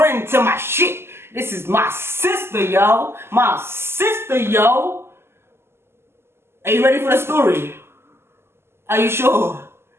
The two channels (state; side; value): late; left; 0.12 ms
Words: to my shit. This is my sister, yo. My sister, yo. Are you ready for the story? Are you sure?